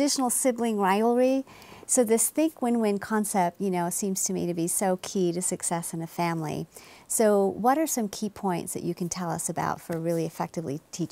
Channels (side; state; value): both; identical; correlation 1.00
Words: sibling rivalry. So this think win-win concept, you know, seems to me to be so key to success in a family. So what are some key points that you can tell us about for really effectively